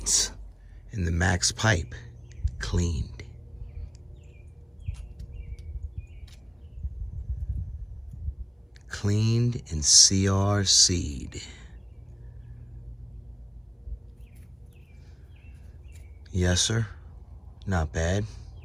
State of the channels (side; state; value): both; identical; correlation 1.00